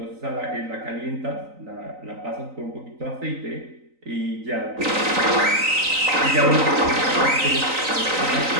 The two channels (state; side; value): late; left; 3.9 ms